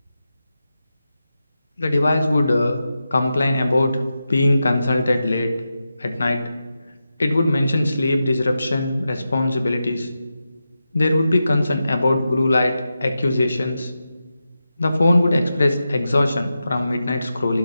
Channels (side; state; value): both; inverted; correlation -0.90